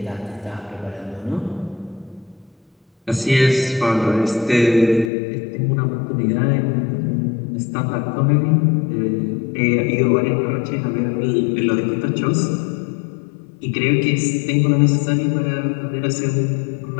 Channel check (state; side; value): drops out; right; at 5.1 s